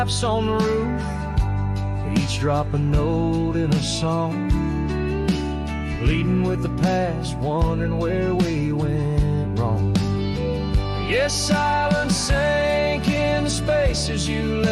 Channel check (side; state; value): both; identical; correlation 1.00